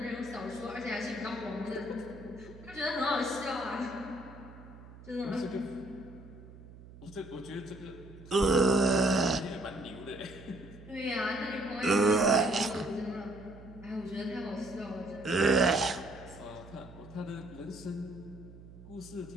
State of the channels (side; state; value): right; noise; hum, 18 dB below the sound